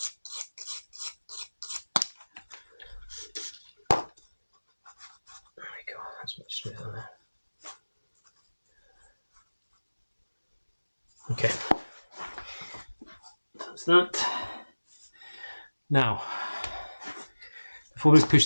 There we go, that's much smoother now. Okay, that's that. Now, before we push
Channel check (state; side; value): inverted; both; correlation -1.00